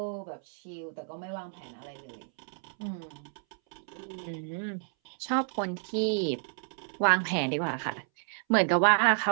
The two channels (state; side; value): silent; left; 57 dB below the other